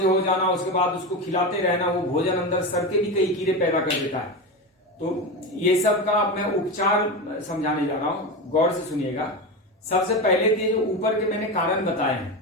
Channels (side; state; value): both; normal; correlation 0.20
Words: हो जाना, उसके बाद उसको खिलाते रहना, वो भोजन अंदर सर के भी कई कीड़े पैदा कर देता है। तो ये सब का मैं उपचार समझाने जा रहा हूं, गौर से सुनिएगा। सबसे पहले तो जो ऊपर के मैंने कारण बताए